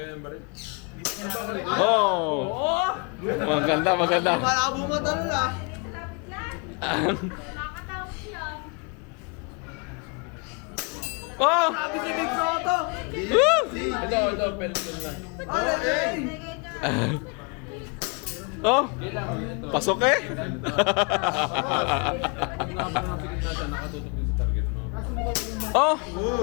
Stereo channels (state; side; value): quieter; right; 33.4 dB